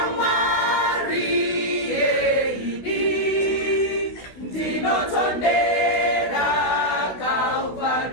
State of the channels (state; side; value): late; right; 16 ms